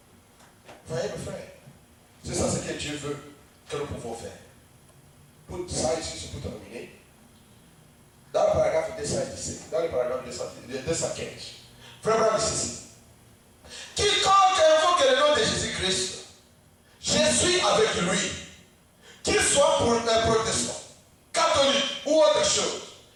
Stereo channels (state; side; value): identical; both; correlation 1.00